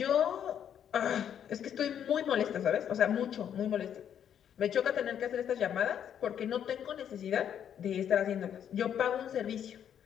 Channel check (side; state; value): right; quieter; 9.1 dB